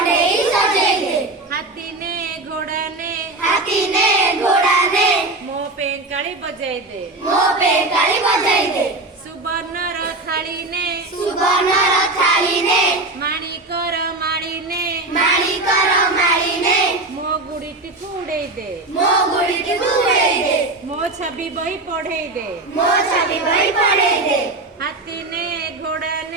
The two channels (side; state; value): left; quieter; 3.0 dB